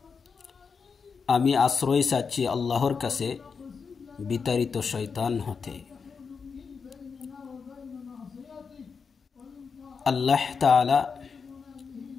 আমি আশ্রয় চাচ্ছি আল্লাহর কাছে বিতাড়িত শয়তান হতে। আল্লাহ তাআলা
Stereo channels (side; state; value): right; quieter; 5.5 dB